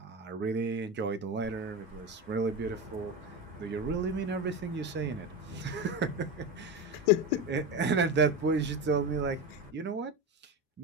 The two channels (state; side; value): normal; both; correlation 0.20